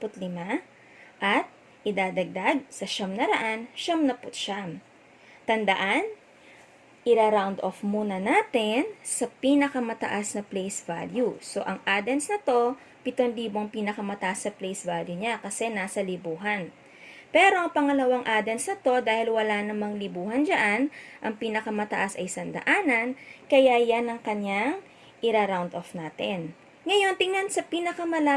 at idadagdag sa 999. Tandaan, ira-round off muna natin sa pinakamataas na place value. So, ang addends na to, 7,000 pinakamataas sa place value niya kasi nasa libuhan. Pero ang pangalawang addends na to, dahil wala namang libuhan dyan, ang pinakamataas ay 100, kaya yan ang kanyang ira-round off natin. Ngayon, tingnan sa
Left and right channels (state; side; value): identical; both; correlation 1.00